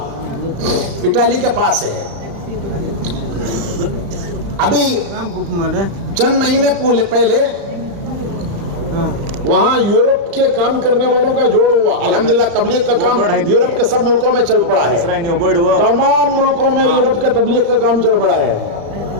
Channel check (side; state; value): left; late; 35 ms